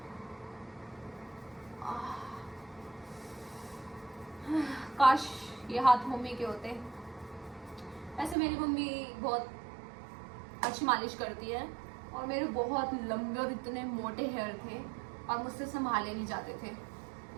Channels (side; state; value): left; drops out; at 8.3 s